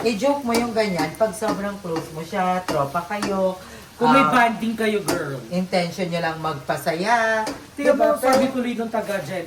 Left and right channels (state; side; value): identical; both; correlation 1.00